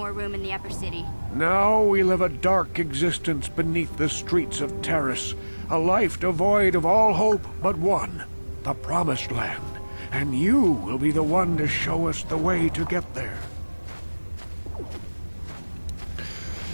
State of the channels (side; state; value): both; inverted; correlation -1.00